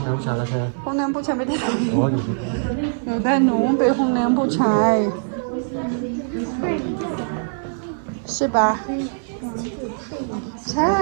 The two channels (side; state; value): left; silent; digital silence